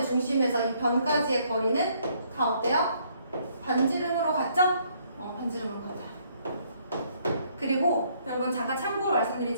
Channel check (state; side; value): inverted; both; correlation -0.67